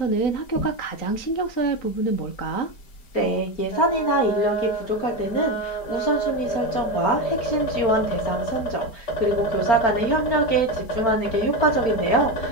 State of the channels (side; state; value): right; late; 4.4 ms